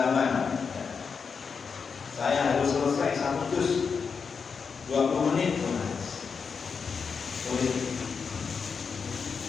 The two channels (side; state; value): right; quieter; 5.7 dB